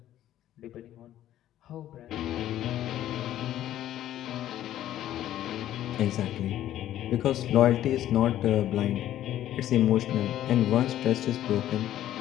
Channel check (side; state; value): right; quieter; 12.5 dB